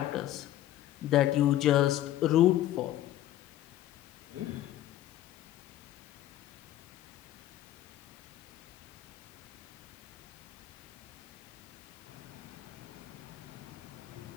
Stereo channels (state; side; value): quieter; right; 13.4 dB